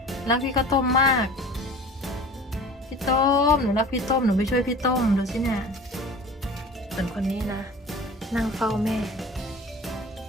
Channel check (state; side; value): normal; both; correlation 0.40